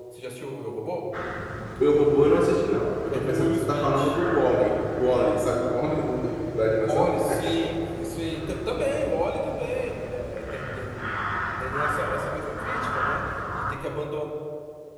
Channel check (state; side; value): identical; both; correlation 1.00